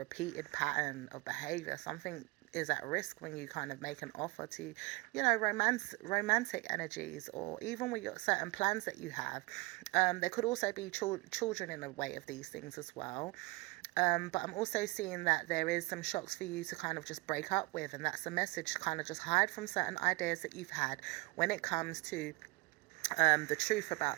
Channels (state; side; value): quieter; left; 23.9 dB